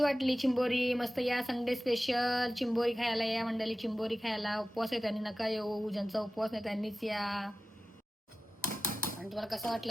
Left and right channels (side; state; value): both; normal; correlation 0.94